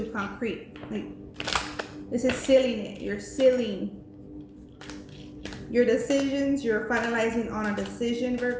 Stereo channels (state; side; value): identical; both; correlation 1.00